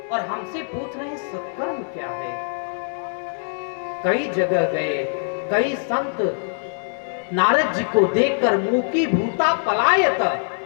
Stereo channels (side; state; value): right; silent; 64 dB below the other